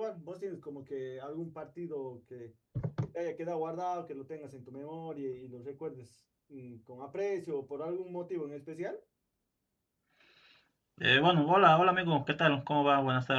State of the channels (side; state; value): both; identical; correlation 1.00